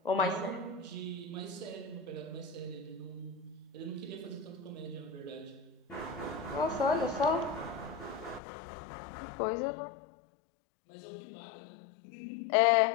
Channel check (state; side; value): drops out; right; at 8.4 s